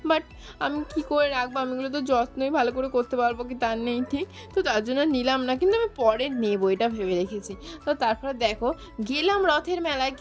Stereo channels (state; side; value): identical; both; correlation 1.00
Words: বাট আমি কি করে রাখবো, আমিগুলো তো যত্নই ভালো করে করতে পারবো কি তার নেই ঠিক। তো তার জন্য নিলাম না, কিন্তু আমি পরে নেবো এটা ভেবে রেখেছি। তো তারপরে দেখো গেলাম রথের মেলায়,